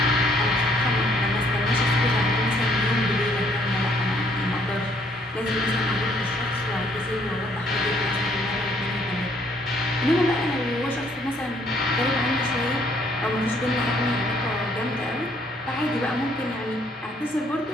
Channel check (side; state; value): both; normal; correlation 0.65